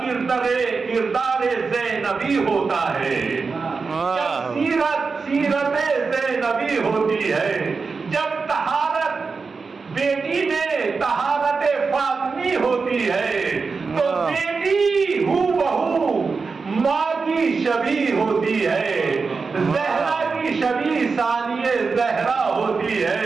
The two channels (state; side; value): quieter; left; 4.7 dB